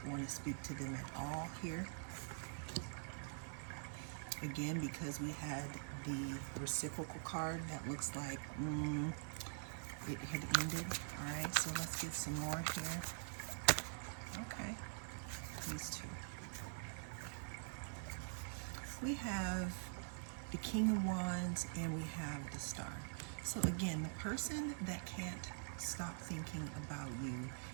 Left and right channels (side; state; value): left; silent; digital silence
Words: want to speak to them at all here. Again, because we had the reciprocal card that looks like it had ended. All right, so let's get some more here. Okay, these two. We have the King of Wands and we have the Star. So again, the person that can't stop thinking about